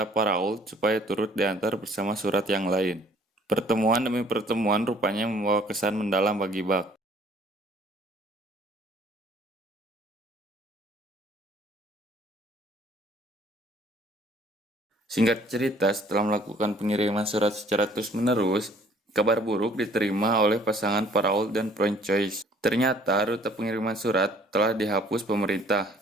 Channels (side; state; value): both; normal; correlation 0.57